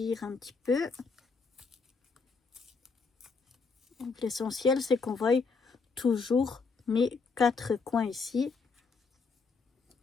un petit peu. L'essentiel c'est qu'on voie toujours mes 4 coins ici.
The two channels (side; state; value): right; quieter; 4.7 dB